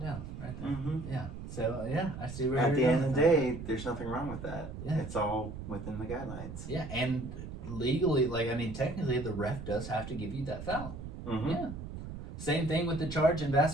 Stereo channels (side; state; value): right; noise; rumble, 9 dB below the sound